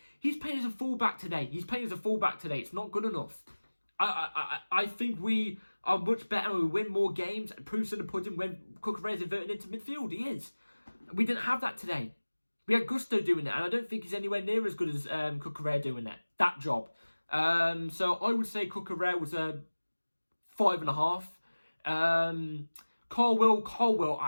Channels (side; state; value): both; inverted; correlation -1.00